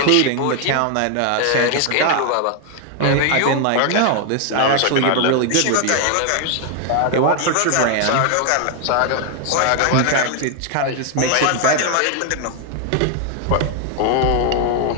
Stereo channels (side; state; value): both; different; correlation 0.00